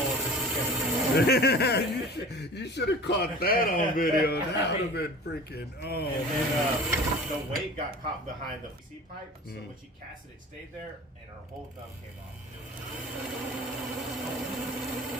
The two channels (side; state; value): both; normal; correlation 0.40